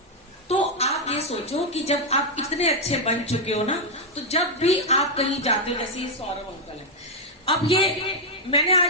तो आप ये सोचो कि जब आप इतने अच्छे बन चुके हो ना, तो जब भी आप कहीं जाते हो, जैसे सौरभ अंकल है, अब ये मैंने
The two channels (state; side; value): normal; both; correlation 0.00